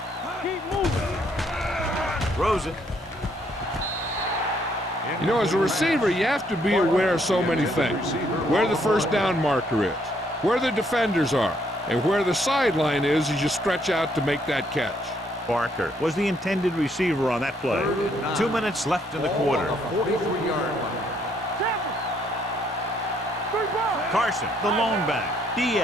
keep moving. Throws it. You know, as a receiver, you have to be aware of so many things. Where the first down marker is, where the defenders are, and where the sideline is as you stretch out to make that catch. Barker was the intended receiver on that play. 2 minutes left in the quarter. 43-yard line. Carson, the lone back.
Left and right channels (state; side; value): normal; both; correlation 0.69